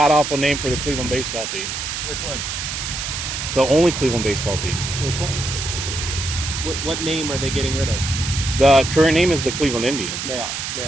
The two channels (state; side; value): noise; right; hiss, 4 dB below the sound